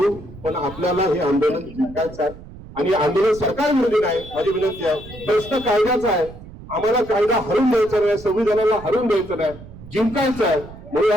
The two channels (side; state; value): right; noise; rumble, 17 dB below the sound